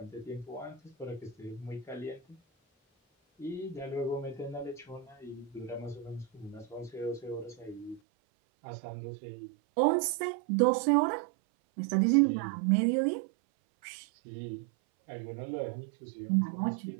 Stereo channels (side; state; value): left; drops out; at 8.0 s